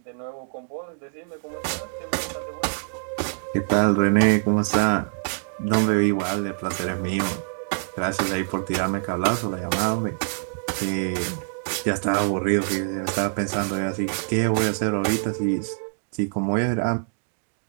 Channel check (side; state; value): left; silent; digital silence